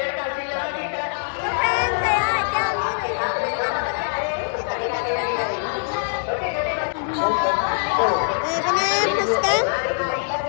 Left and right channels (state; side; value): silent; right; digital silence